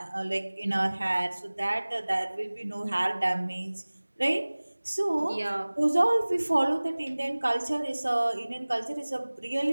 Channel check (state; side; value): inverted; both; correlation -1.00